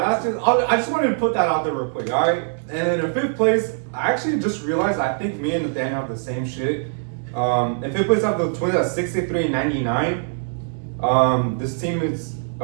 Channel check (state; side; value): silent; left; digital silence